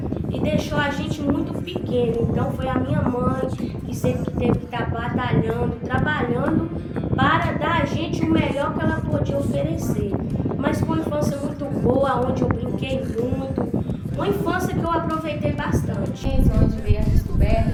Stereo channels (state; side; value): identical; both; correlation 1.00